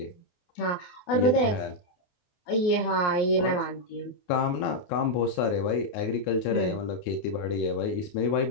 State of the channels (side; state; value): right; late; 28 ms